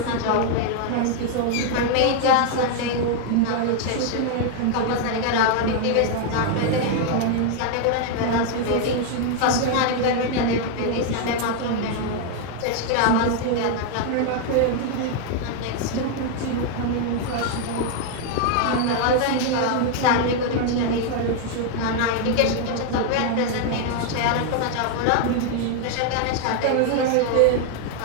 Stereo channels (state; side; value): different; both; correlation 0.00